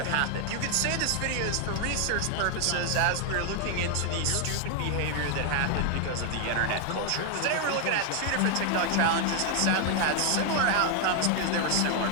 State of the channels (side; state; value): both; different; correlation 0.00